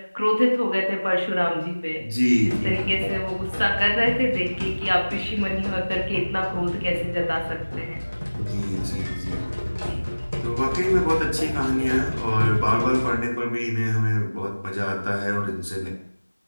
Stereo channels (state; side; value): inverted; both; correlation -1.00